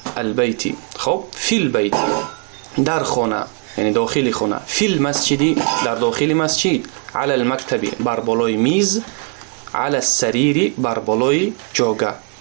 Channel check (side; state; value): left; quieter; 39.2 dB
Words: البیت. خب فی البیت در خانه یعنی داخل خانه. فی المسجد در داخل مسجد. علی المکتب بر بالای میز. علی السریر بر بالای جاگه.